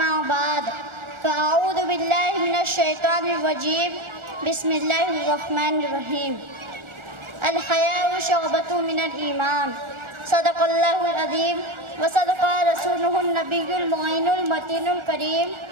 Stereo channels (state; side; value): late; left; 1.4 ms